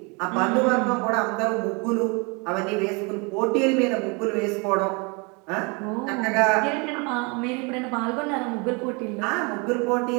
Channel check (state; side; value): quieter; left; 30.6 dB